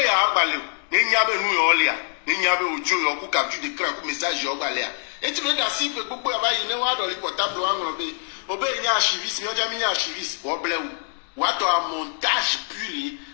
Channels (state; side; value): silent; right; 62 dB below the other